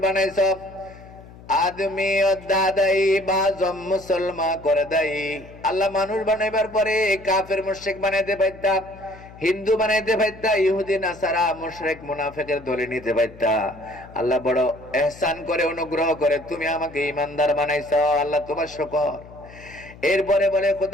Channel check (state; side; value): noise; left; hum, 19 dB below the sound